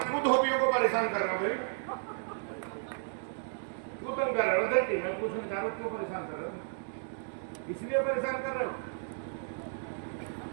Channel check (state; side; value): silent; left; digital silence